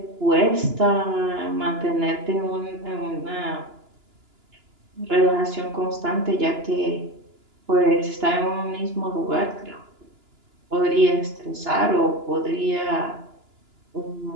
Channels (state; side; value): late; left; 2.9 ms